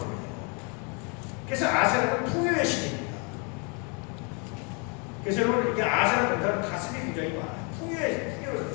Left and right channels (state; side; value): quieter; right; 34.9 dB